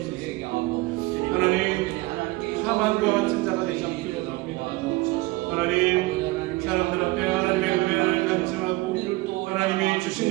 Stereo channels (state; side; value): quieter; left; 21.8 dB